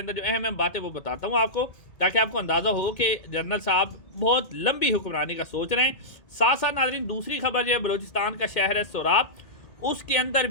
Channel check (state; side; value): late; right; 2.2 ms